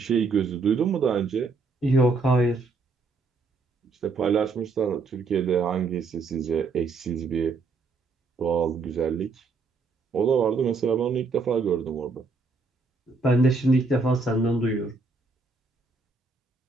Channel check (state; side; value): quieter; left; 4.1 dB